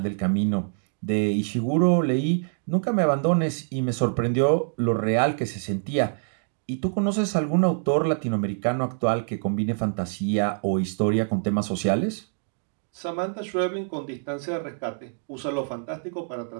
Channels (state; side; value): silent; left; digital silence